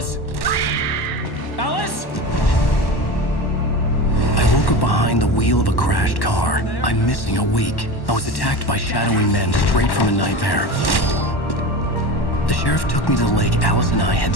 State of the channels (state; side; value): late; right; 1.1 ms